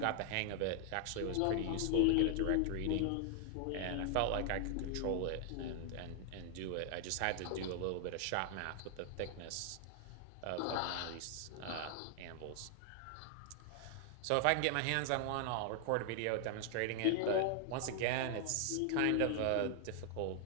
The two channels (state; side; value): different; both; correlation 0.00